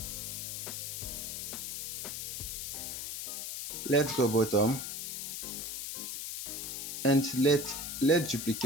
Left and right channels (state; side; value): noise; left; hiss, 5 dB below the sound